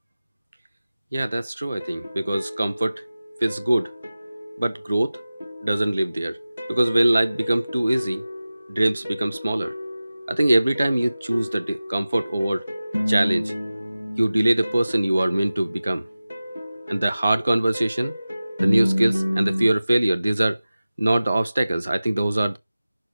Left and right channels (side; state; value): both; inverted; correlation -0.96